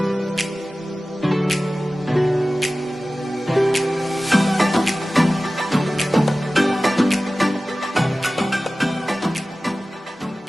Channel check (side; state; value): both; normal; correlation 0.96